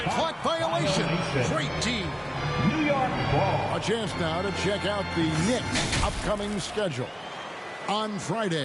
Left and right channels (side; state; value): both; identical; correlation 1.00